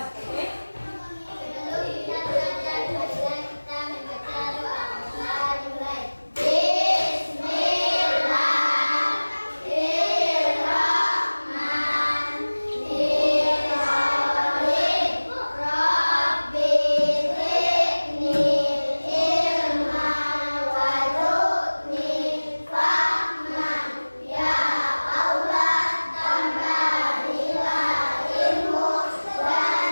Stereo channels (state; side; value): inverted; both; correlation -1.00